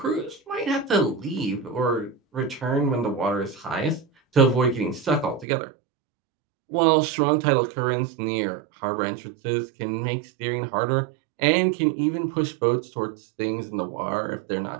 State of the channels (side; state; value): left; drops out; at 5.5 s